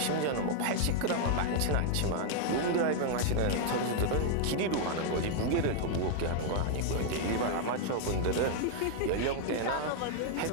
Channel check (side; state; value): both; different; correlation 0.00